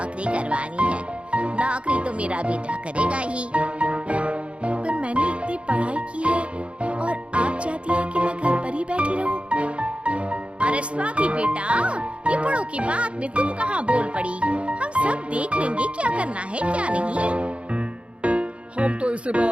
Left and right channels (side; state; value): left; late; 0.060 ms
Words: करवानी है? नौकरी तो मेरा बेटा करेगा ही। पर मैंने इतनी पढ़ाई की है और आप चाहती हैं कि मैं घर पर ही बैठी रहूं? अरे स्वाति बेटा, ये बड़ों की बात में तुम कहाँ बोल पड़ी? हम सब देख लेंगे क्या करना है क्या नहीं। हम तो इसी